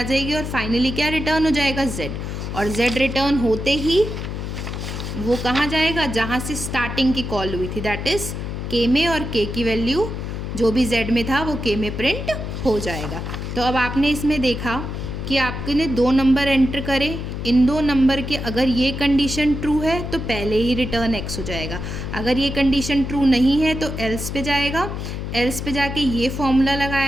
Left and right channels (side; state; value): left; noise; hum, 5 dB below the sound